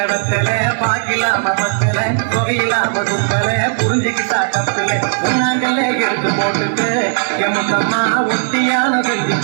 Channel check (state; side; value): silent; left; 69 dB below the other